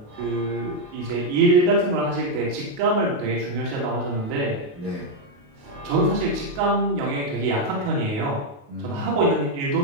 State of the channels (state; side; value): late; left; 28 ms